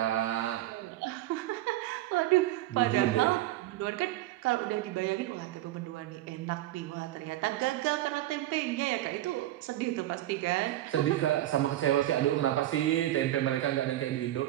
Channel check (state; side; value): quieter; left; 14.9 dB